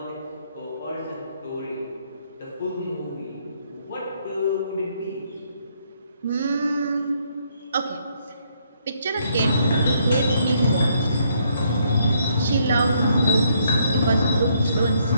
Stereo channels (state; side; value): inverted; both; correlation -0.71